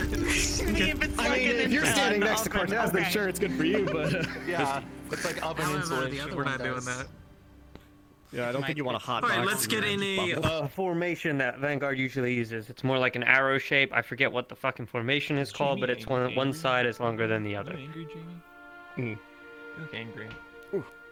if you're standing next to Cortez, then sure, it's good for you, but... Yeah, it's like oven insulation. We're not doing that. Yeah, I don't think you want a hot Alright, box let's in get your in bubble. a formation that Vanguard usually uses. It's more like an arrow shape. I forget what the fucking formation is called, but it's one side is longer than the other. Are you angry, Jamie? You look angry.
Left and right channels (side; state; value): both; identical; correlation 1.00